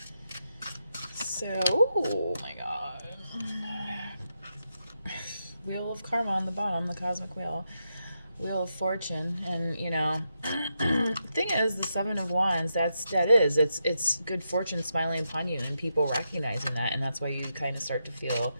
So, oh my god. Wheel of Karma on the bottom, the cosmic wheel. Wheel of Fortune. And, you know, thing thing is, the Seven of Wands, it's good fortune smiling upon you and people recognizing that, and that's why you kind of start to feel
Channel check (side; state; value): both; inverted; correlation -0.84